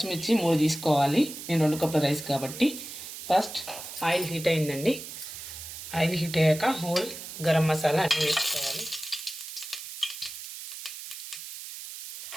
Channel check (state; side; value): noise; right; hiss, 10 dB below the sound